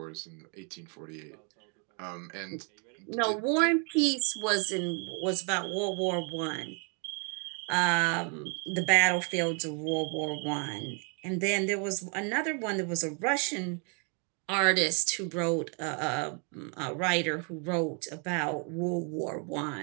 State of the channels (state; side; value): quieter; left; 37.3 dB